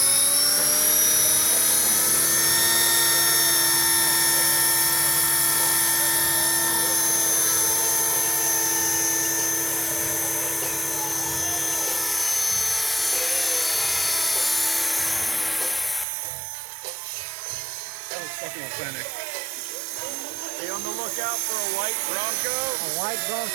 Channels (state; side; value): drops out; left; at 16.1 s